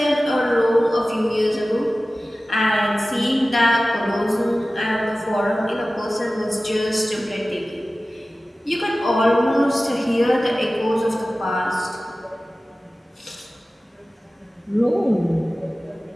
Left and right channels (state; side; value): normal; both; correlation 0.96